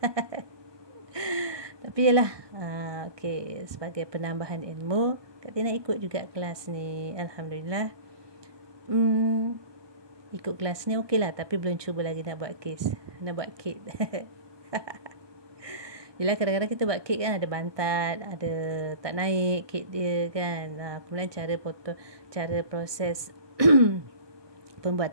Tapi yalah, okey, sebagai penambahan ilmu, Kak Tina ikut juga kelas ni. Alhamdulillah. Ikut kelas ni okey lah, tapi belum cuba lagi nak buat kek. Yelah, kadang-kadang kita buat kek kan ada bantat, ada tak naik kek dia kan. Kemudian cara proses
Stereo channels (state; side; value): late; left; 1.2 ms